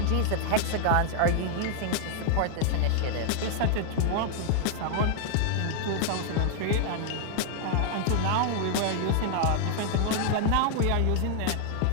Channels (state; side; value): different; both; correlation 0.00